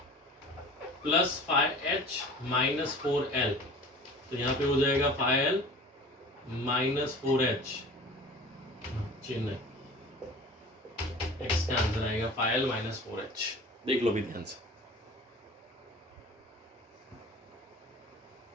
plus 5H minus 4L। तो यहाँ पे हो जाएगा 5L माइनस 4H, चिन्ह है, x का आंसर आएगा 5L माइनस 4H। देख लो भी ध्यान से।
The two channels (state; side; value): normal; both; correlation 0.42